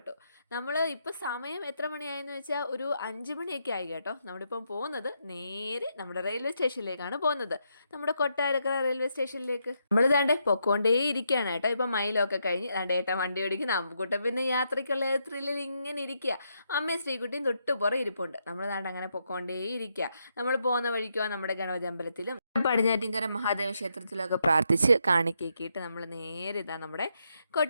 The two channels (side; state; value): both; inverted; correlation -0.80